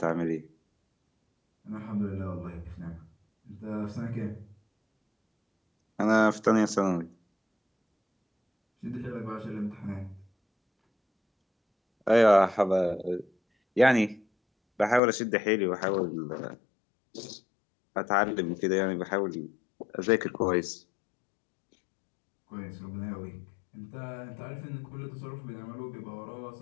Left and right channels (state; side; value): drops out; right; at 15.0 s